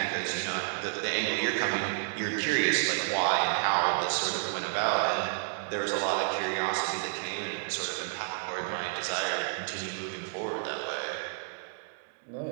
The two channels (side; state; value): left; silent; digital silence